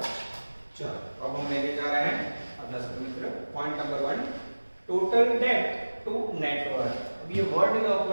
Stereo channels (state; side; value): inverted; both; correlation -1.00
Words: चलो अब हम लेके जा रहे हैं अपना मित्र point number 1, total debt to net worth. अब ये वर्ड नहीं